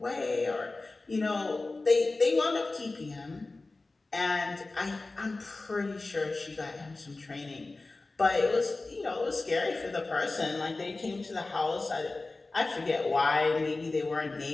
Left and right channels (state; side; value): quieter; right; 3.3 dB